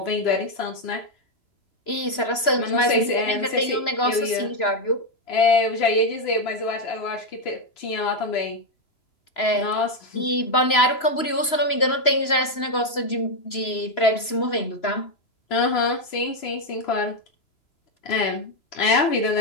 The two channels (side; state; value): right; late; 3.0 ms